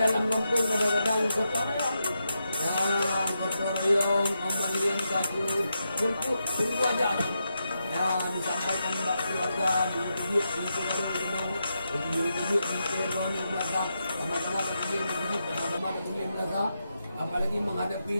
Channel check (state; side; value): inverted; both; correlation -0.85